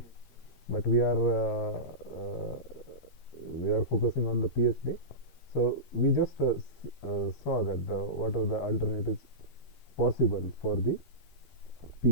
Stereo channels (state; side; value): late; right; 13 ms